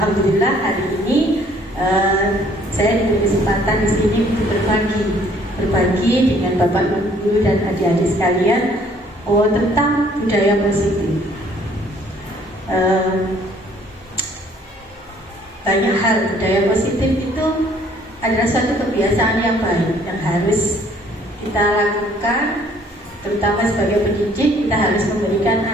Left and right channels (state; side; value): normal; both; correlation 0.60